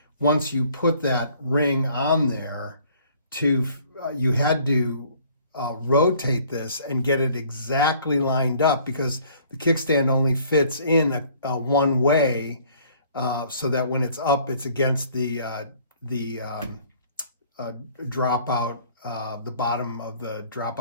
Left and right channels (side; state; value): both; inverted; correlation -0.56